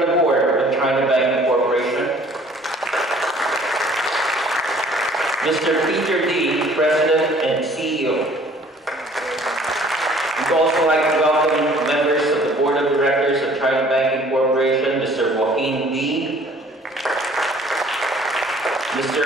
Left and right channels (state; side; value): normal; both; correlation 0.54